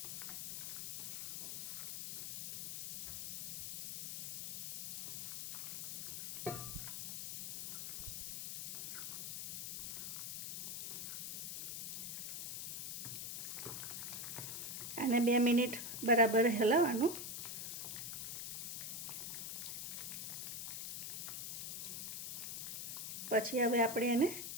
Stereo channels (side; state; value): left; noise; hiss, 4 dB below the sound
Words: આને 2 મિનિટ બરાબર હલાવવાનું। પછી હવે આપણે એને